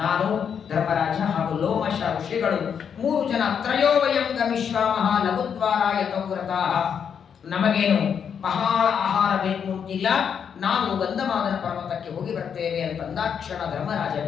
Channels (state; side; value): quieter; right; 7.5 dB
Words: ನಾನು, ಧರ್ಮರಾಜ ಹಾಗೂ ಲೋಮಶ ಋಷಿಗಳು 3 ಜನ ತ್ರಯೋವಯಂಗ ಮಿಶ್ರಾಮಃ ಲಘುದ್ವಾರಾಯ ತೌವ್ರತಾಃ. ನಮಗೇನು ಬಹಳ ಆಹಾರ ಬೇಕು ಅಂತಿಲ್ಲ, ನಾವು ಗಂಧಮಾದನ ಪರ್ವತಕ್ಕೆ ಹೋಗಿ ಬರ್ತೇವೆ ಅಂತಂದಾಕ್ಷಣ ಧರ್ಮರಾಜ